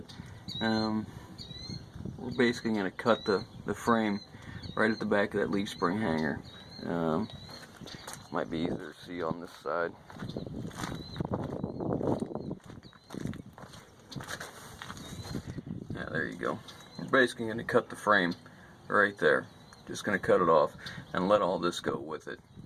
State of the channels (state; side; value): identical; both; correlation 1.00